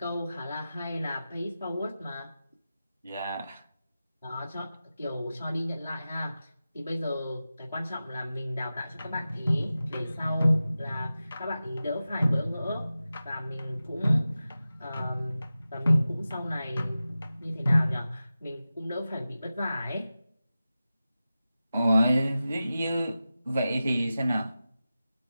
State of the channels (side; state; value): both; inverted; correlation -0.94